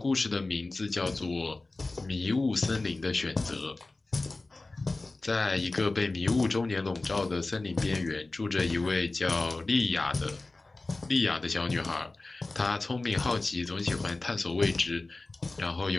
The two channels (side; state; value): right; quieter; 3.2 dB